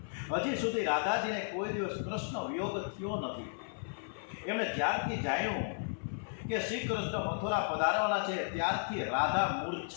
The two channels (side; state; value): right; silent; 55 dB below the other